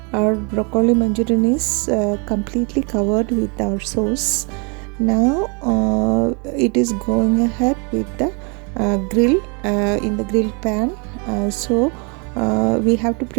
our broccoli manchurian is completely covered with our sauce. Now it is going ahead with the grill in the grill pan. So we have to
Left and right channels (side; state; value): left; quieter; 33.3 dB